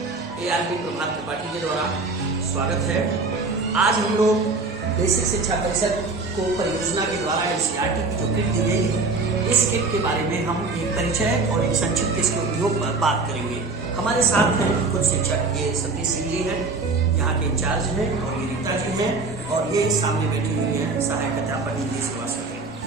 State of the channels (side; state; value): left; quieter; 3.8 dB